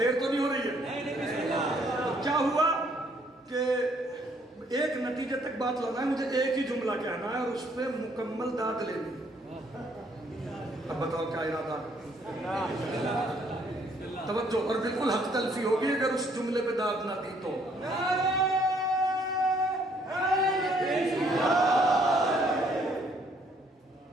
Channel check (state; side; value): normal; both; correlation 0.66